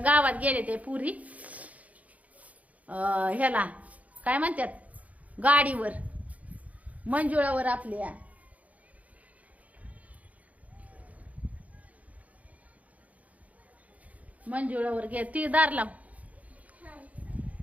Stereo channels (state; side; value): late; left; 0.070 ms